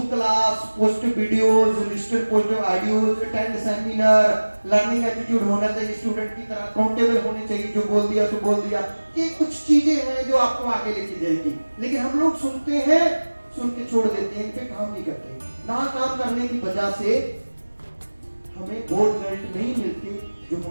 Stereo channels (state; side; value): inverted; both; correlation -1.00